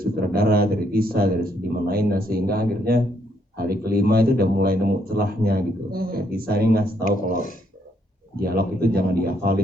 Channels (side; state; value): both; normal; correlation 0.72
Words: dari Tisa, dari seniman lainnya, sehingga akhirnya hari kelima itu udah mulai nemu celahnya gitu. Kayak Tisa ini ngasih tahu kalau dialog itu jangan